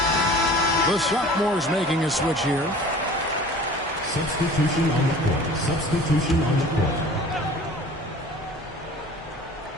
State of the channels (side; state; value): both; normal; correlation 0.44